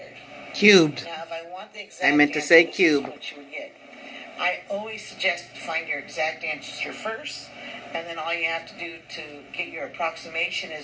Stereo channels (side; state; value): both; identical; correlation 1.00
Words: Cubed. Now, if I want the exact I meant to answer, say this cube. is what you would get. I always suggest to find your exact answer first, and then all you have to do to get your approximation